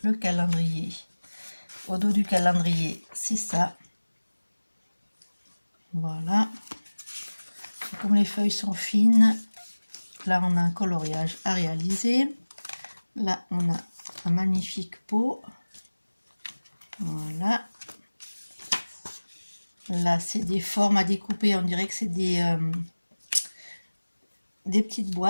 le calendrier. Au dos du calendrier, c'est ça. Voilà. Et comme les feuilles sont fines, là, on a un coloriage à réaliser. Là, on a un magnifique pot. Voilà. Là, c'est des formes à découper. On dirait que c'est des petites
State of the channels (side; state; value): both; inverted; correlation -1.00